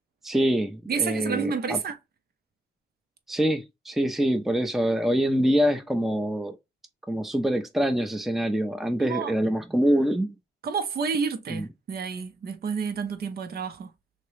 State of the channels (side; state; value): both; normal; correlation 0.83